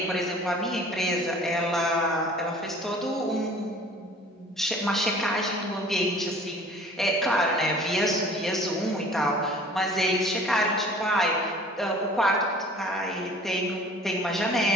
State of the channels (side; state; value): both; normal; correlation 0.48